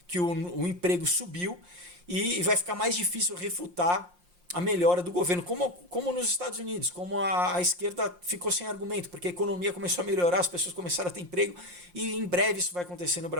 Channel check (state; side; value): late; left; 5.6 ms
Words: que o emprego subiu e vai ficar mais difícil refutar a melhora do governo, como nos Estados Unidos, como a esquerda ficou sem argumento, porque a economia começou a melhorar, as pessoas começaram a ter emprego, e em breve isso vai acontecer no